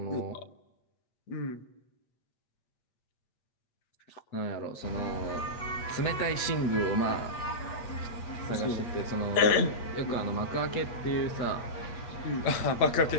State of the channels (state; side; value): late; right; 8.4 ms